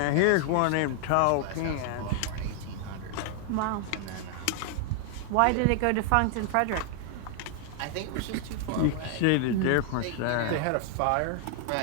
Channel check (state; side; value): different; both; correlation 0.00